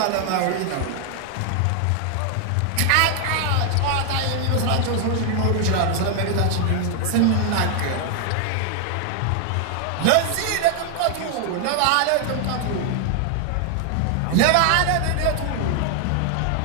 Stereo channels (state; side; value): different; both; correlation 0.00